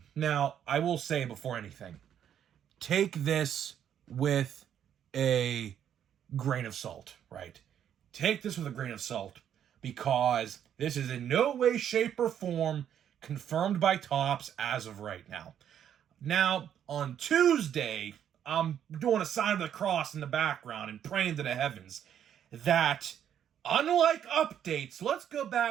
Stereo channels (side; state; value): left; quieter; 9.6 dB